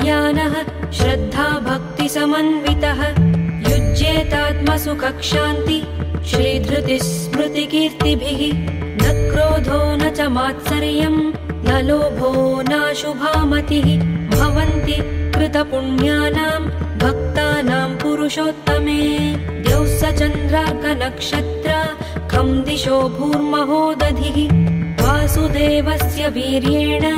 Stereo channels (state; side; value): identical; both; correlation 1.00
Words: श्रद्धा भक्तिसमन्वितः युज्येतात्मसुखक्षान्ति श्रीधृतिस्मृतिकीर्तिभिः न क्रोधो न च मात्सर्यं न लोभो नाशुभामतिः भवन्ति कृतपुण्यानां भक्तानां पुरुषोत्तमे द्यौः स चन्द्रार्कनक्षत्र खं दिशो भूर्महोदधिः वासुदेवस्य वीर्येण